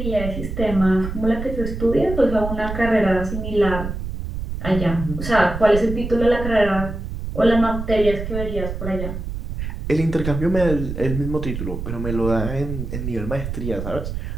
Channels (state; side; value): noise; right; rumble, 6 dB below the sound